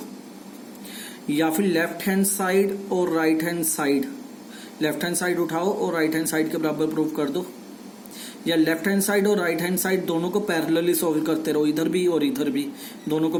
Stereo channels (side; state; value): both; identical; correlation 1.00